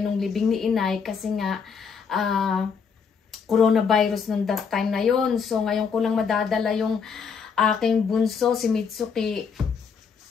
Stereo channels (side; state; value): right; quieter; 6.1 dB